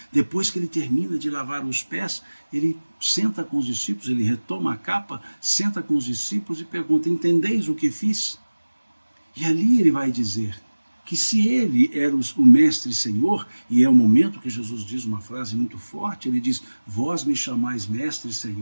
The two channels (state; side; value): inverted; both; correlation -1.00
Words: Depois que ele termina de lavar os pés, ele senta com os discípulos, ele retoma a capa, senta com os discípulos e pergunta: entendeis o que fiz? E ali ele vai dizer que se ele era o mestre e senhor, e é o momento que Jesus diz uma frase muito forte, ele diz: vós me chamais mestre e